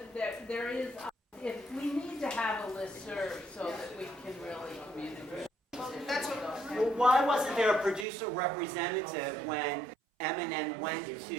that there is, if we need to have a listserv so that we can really communicate. that's what, Well, why wasn't there a producer representative when M&N went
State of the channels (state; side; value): drops out; left; at 8.1 s